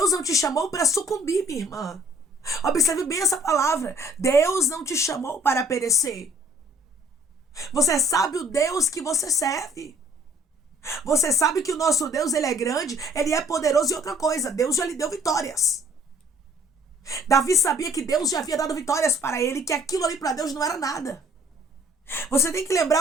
não te chamou para sucumbir, minha irmã. Observe bem essa palavra. Deus não te chamou para perecer. Você sabe o Deus que você serve. Você sabe que o nosso Deus, ele é grande, ele é poderoso e outra coisa, Deus já lhe deu vitórias. Davi sabia que Deus já havia dado vitórias para ele, que aquilo ali para Deus não era nada. Você tem que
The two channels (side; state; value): both; normal; correlation 0.58